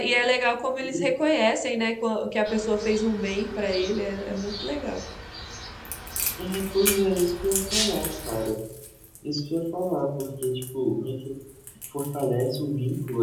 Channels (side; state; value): both; identical; correlation 1.00